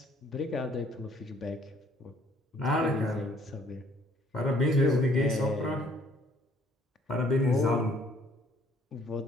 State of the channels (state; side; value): normal; both; correlation 0.61